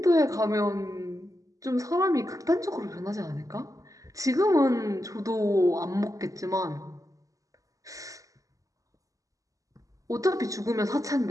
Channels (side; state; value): left; late; 0.16 ms